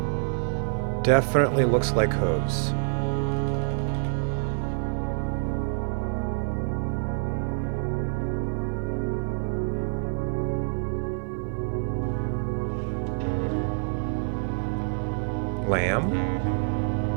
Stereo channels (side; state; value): left; silent; 59 dB below the other